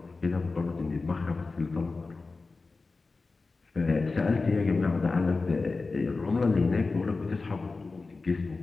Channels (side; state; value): right; quieter; 3.8 dB